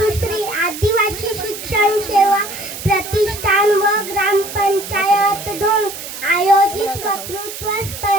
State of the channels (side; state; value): right; noise; hiss, 10 dB below the sound